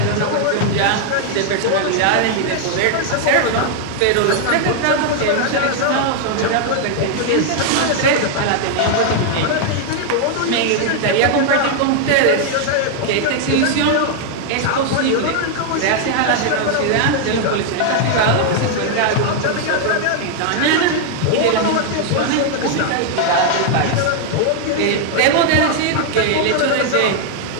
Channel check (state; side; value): different; both; correlation 0.00